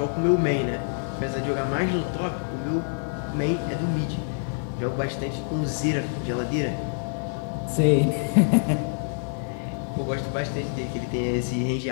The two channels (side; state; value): right; silent; digital silence